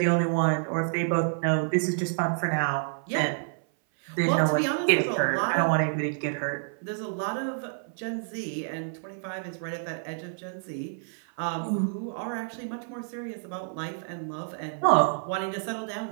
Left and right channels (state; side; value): silent; left; 59 dB below the other